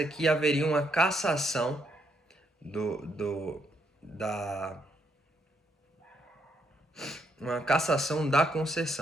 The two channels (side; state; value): both; normal; correlation 0.75